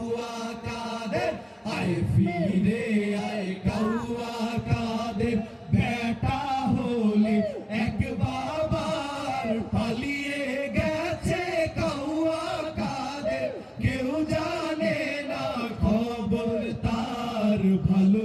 কাদের আয় ফিরে আয় কাউয়া কাদের বেটা হলে এক বাবার পালিয়ে গেছে কাউয়া কাদের কেউ জানে না খবর তার ভালো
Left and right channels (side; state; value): both; identical; correlation 1.00